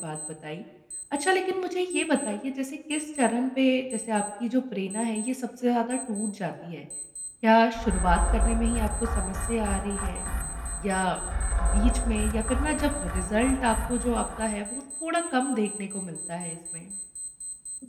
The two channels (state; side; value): identical; both; correlation 1.00